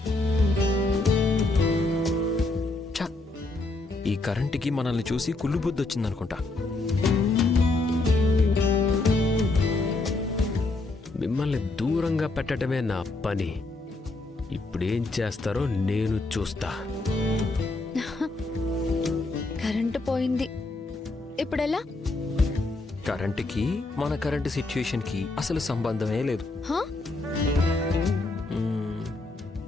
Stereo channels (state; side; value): quieter; right; 3.1 dB